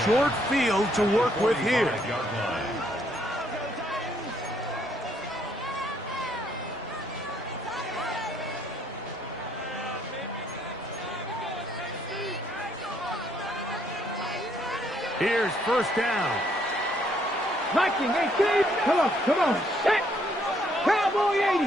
short field to work with here. Here's first down. Viking 18. Come on. Set. Cowboy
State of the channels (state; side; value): normal; both; correlation 0.69